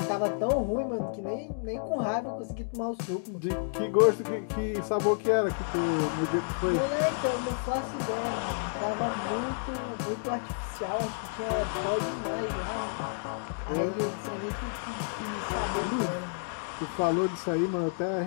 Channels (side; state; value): right; silent; digital silence